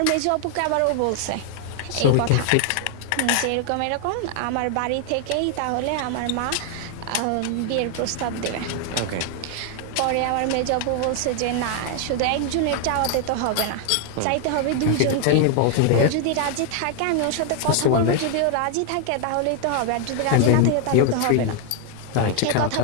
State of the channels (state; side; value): different; both; correlation 0.00